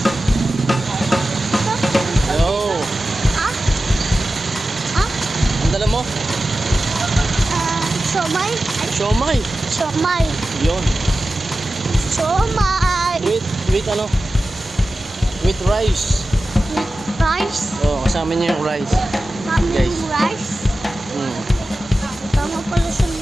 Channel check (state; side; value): normal; both; correlation 0.94